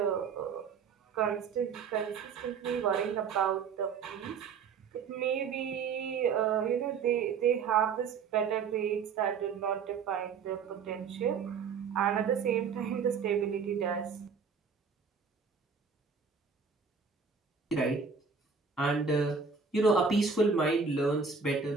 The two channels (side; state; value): left; quieter; 5.8 dB